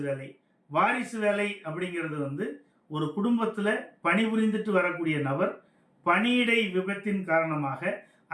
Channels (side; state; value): both; identical; correlation 1.00